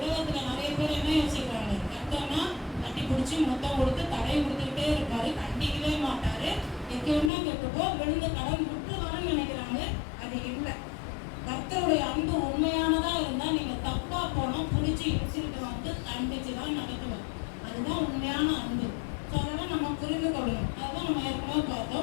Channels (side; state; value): right; drops out; at 7.3 s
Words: நிறைய பேர் என்ன யோசிக்கிறாங்க, கர்த்தர்னா தட்டி பிடிச்சி மொத்தம் கொடுத்து தடை கொடுத்துக்கிட்டே இருப்பாரு, கண்டிக்கவே மாட்டாரு, எங்கன்னா கேட்டுப்போ விழுந்து கடன் விட்டுருவான்னு நினைக்கிறாங்க. அது இல்லை. கர்த்தருடைய அன்பு உண்மையானதா இருந்தா நீங்க தப்பா போனா பிடிச்சி இடிச்சுட்டு வந்து கண்டிச்சுதான் நடத்துவார். அதுதான் உண்மையான அன்பு. ஸோ அதெல்லாம் நம்ம புரிந்து கொள்ளணும். அதுதான் நம்ம ஏற்கனவே